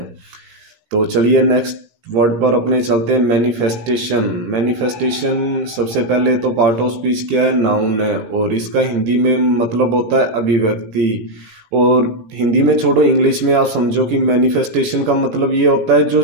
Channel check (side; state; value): left; late; 17 ms